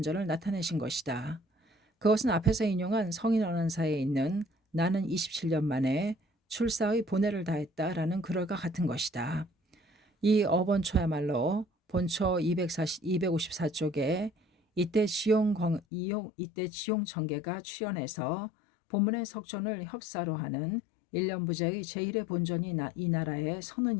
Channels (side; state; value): right; drops out; at 15.8 s